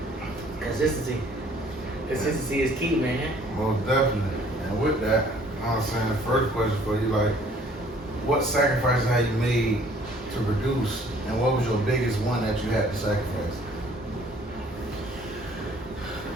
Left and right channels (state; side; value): normal; both; correlation 0.57